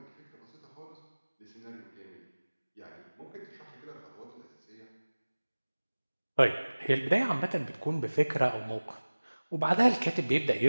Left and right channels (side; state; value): both; inverted; correlation -1.00